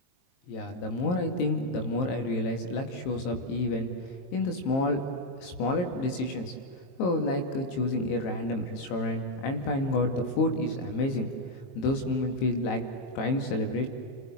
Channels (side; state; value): right; late; 22 ms